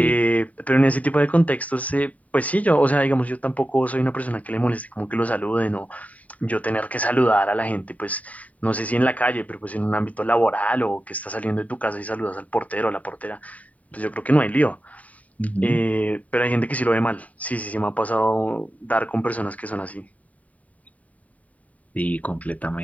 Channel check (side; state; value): right; late; 0.070 ms